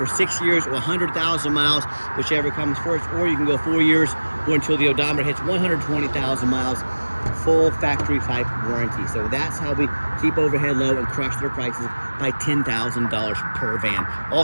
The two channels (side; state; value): both; inverted; correlation -1.00